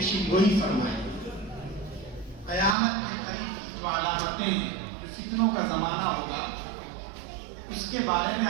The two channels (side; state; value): left; drops out; at 2.8 s